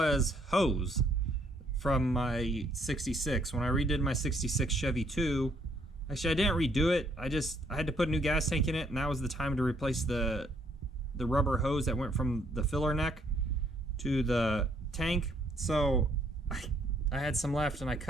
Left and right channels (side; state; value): both; normal; correlation 0.68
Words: hose from my 66. When I redid my 66 Chevy 2, actually I didn't redo it, I had to put a new gas tank in it, and that was the time to replace the rubber hose that went from the filler neck to the tank. So I had some left and I